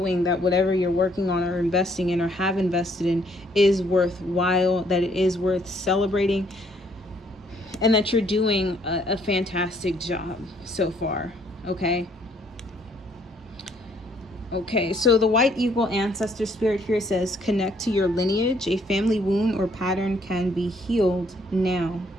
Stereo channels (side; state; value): both; normal; correlation 0.66